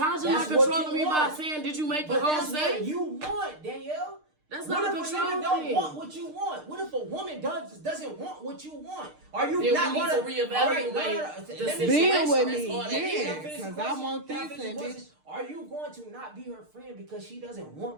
not controlling me by saying, "Did you make the home safe?" That's what you want, Danielle. That's what not a if control a nigga thing. don't want what you want? What if a woman doesn't want what you want? Are you then not we need going to reevaluate the situation? Be with That's me, all that yeah. is. Because I want this and bitch. Are you going to not be her friend because she doesn't want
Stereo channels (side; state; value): left; late; 6.6 ms